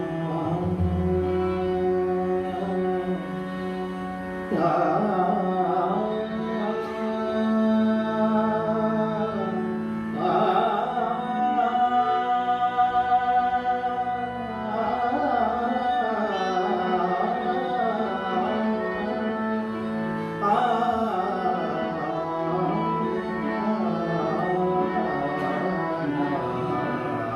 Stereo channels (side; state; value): both; identical; correlation 1.00